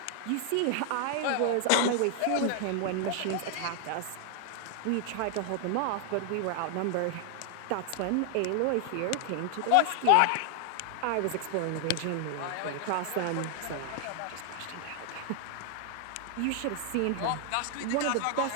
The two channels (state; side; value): different; both; correlation 0.00